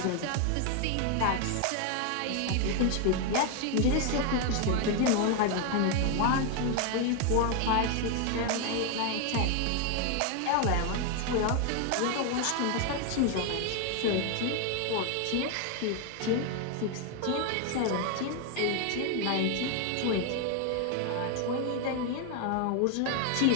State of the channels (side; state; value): both; different; correlation 0.01